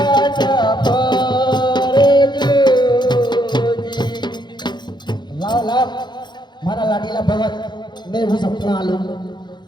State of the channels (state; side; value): late; right; 0.21 ms